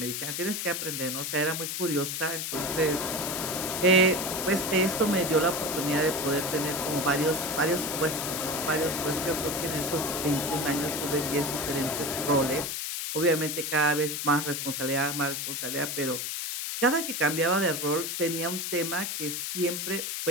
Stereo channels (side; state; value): left; noise; hiss, 3 dB below the sound